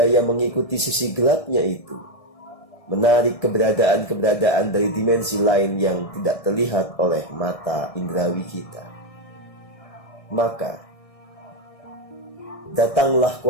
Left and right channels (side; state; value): right; late; 1.6 ms